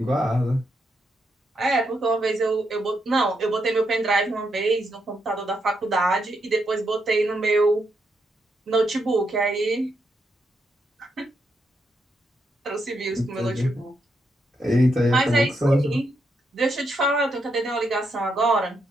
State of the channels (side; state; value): both; normal; correlation 0.80